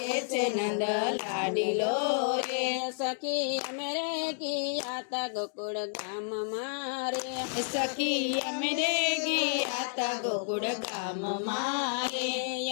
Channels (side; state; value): right; silent; digital silence